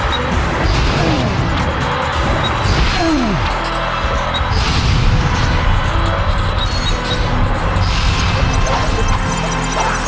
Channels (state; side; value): identical; both; correlation 1.00